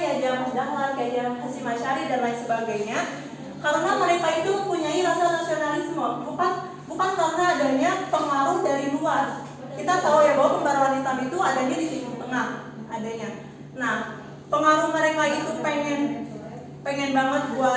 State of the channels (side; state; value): both; identical; correlation 1.00